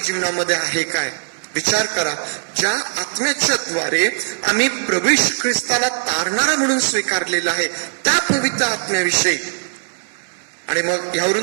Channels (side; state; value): left; silent; 63 dB below the other